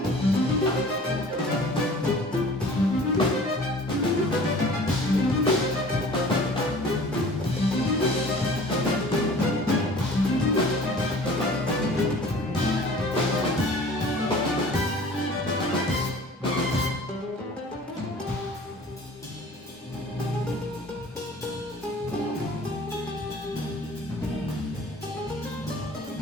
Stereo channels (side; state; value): both; normal; correlation 0.46